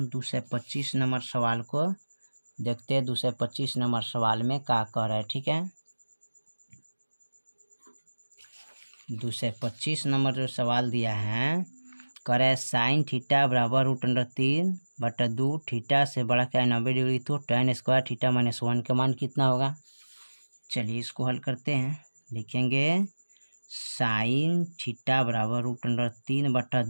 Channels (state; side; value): inverted; both; correlation -1.00